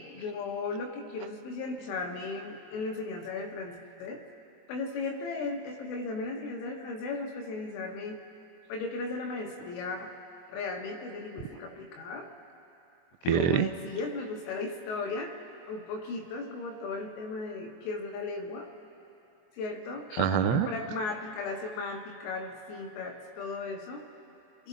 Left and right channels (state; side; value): late; right; 23 ms